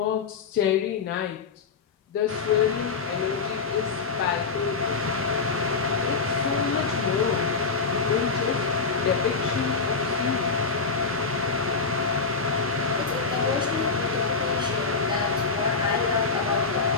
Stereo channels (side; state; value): right; quieter; 4.8 dB